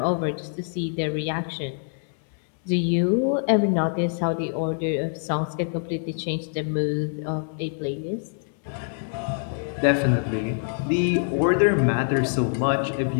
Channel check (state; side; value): silent; right; 62 dB below the other